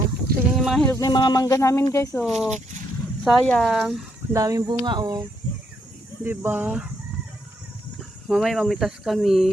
tingnan yung mga hilog na yung mga mangga namin, guys. Oh, sayang. Ang daming bunga, oh. Diba? Mamaya mamitas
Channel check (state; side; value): normal; both; correlation 0.76